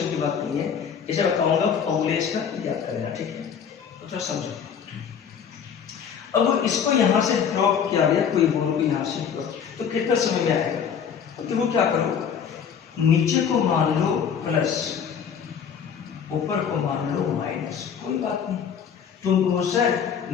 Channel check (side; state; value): right; quieter; 7.5 dB